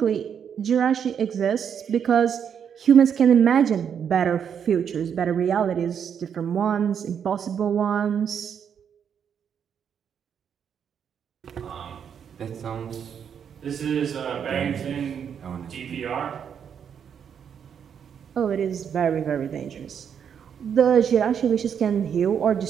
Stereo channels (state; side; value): quieter; left; 7.9 dB